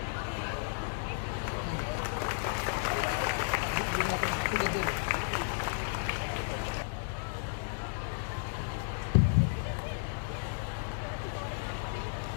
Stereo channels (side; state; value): right; silent; 56 dB below the other